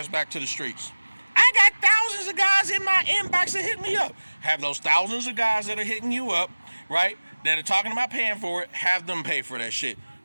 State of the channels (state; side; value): inverted; both; correlation -1.00